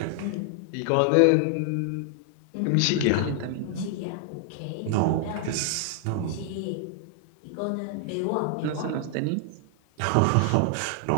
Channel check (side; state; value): both; different; correlation 0.00